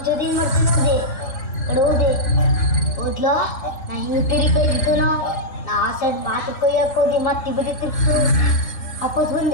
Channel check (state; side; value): late; right; 3.0 ms